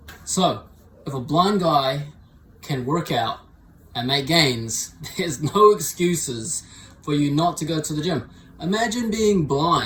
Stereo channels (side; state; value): both; identical; correlation 1.00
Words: So, if a blind guy can work out and make gains, there's no excuses for you not to go to the gym. Imagine being